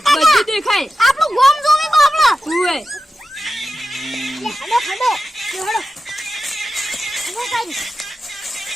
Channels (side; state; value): both; normal; correlation 0.93